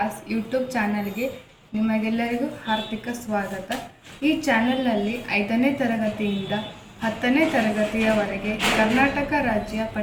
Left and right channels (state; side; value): identical; both; correlation 1.00